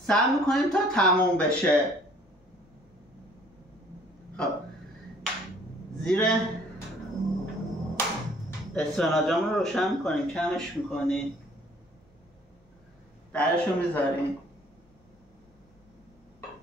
میکنیم تا تموم بشه. خب زیر اسفناجمون رو روشن میکنیم، کمش میکنیم، درش رو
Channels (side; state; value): both; normal; correlation 0.57